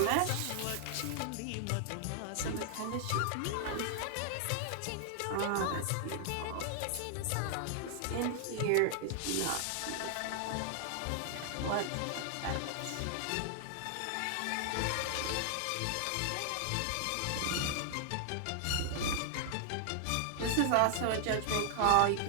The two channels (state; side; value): different; both; correlation 0.00